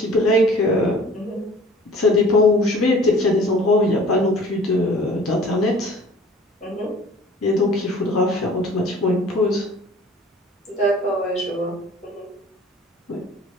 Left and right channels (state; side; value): normal; both; correlation 0.48